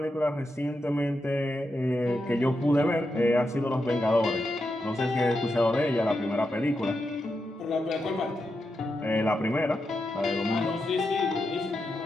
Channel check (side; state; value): both; normal; correlation 0.86